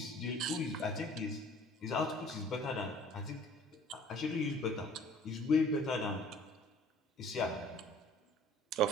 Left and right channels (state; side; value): normal; both; correlation 0.51